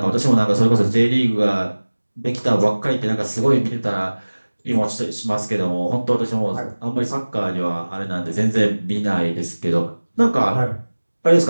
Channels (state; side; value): inverted; both; correlation -1.00